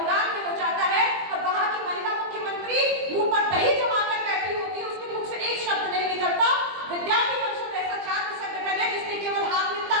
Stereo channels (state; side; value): late; left; 20 ms